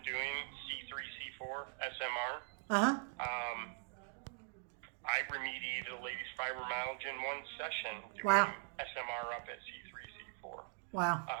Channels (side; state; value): left; quieter; 37.6 dB